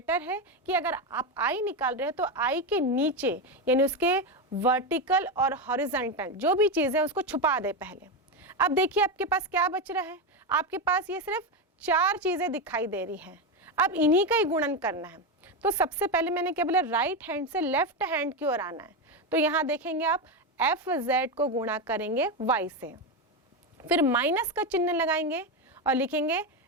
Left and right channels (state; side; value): normal; both; correlation 0.12